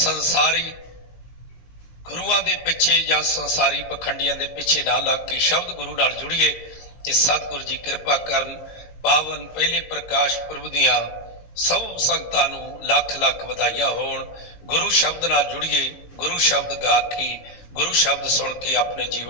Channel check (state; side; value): late; right; 18 ms